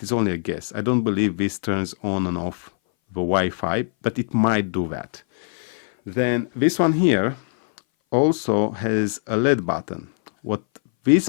is only a guess. I don't believe this turns on and off the Wi-Fi, but it might do that. Then this one here also has a LED button. What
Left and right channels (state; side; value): silent; right; 59 dB below the other